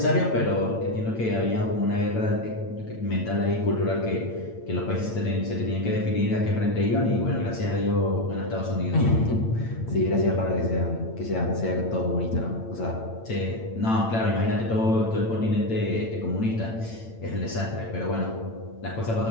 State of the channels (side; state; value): right; late; 8.9 ms